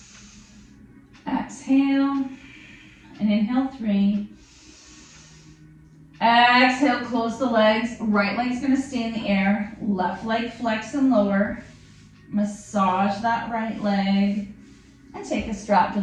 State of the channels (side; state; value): both; identical; correlation 1.00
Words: Exhale. And inhale 3. Exhale, close the legs. Right leg's going to stay in the air. Left leg flex and lower. Massage that right leg. And take a strap to